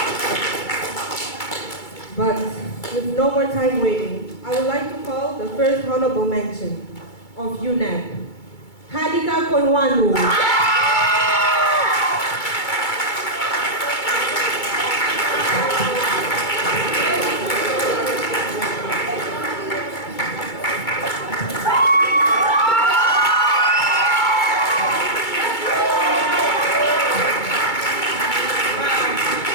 But with no more time waiting, I would like to call the first honorable mention of UNEP, Hadika Konwanu.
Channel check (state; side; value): late; right; 2.3 ms